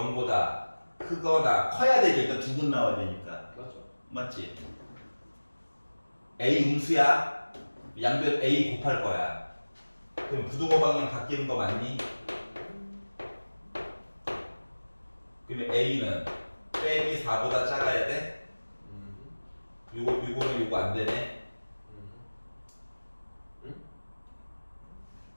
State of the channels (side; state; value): both; inverted; correlation -1.00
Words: 크거나 커야 되죠. 일단 두 분 나와야 되니까. 그렇죠. 맞지? A 음수야. 양변 A 곱할 거야. 그럼 부등호 방향 바뀌는 거 맞니? 그러면 A는 빼기 4보다 작아야 돼? 요거는 요거 안 되네.